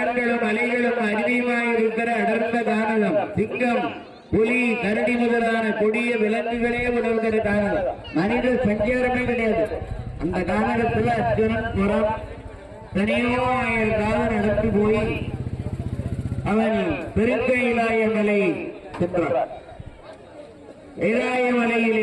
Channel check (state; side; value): identical; both; correlation 1.00